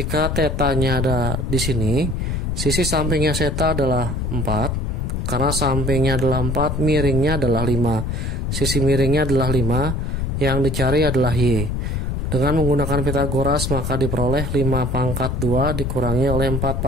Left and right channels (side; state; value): left; noise; rumble, 1 dB below the sound